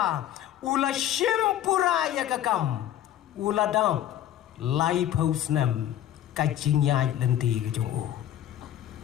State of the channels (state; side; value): quieter; right; 11.8 dB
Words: ula shimpura ya kakam ula dam lai pau snem kajinyai lenti kejong u.